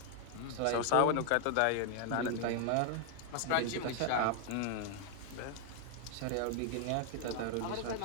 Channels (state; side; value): different; both; correlation 0.00